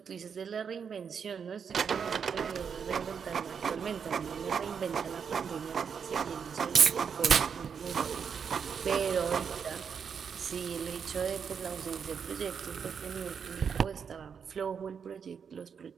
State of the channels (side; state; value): left; quieter; 6.7 dB